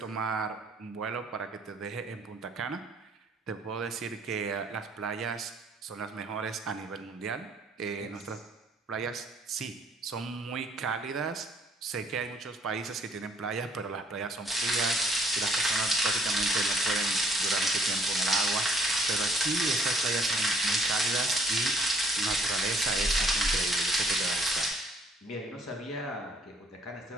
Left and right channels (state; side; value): normal; both; correlation 0.63